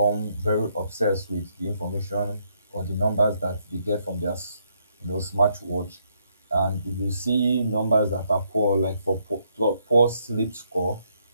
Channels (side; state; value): both; inverted; correlation -0.74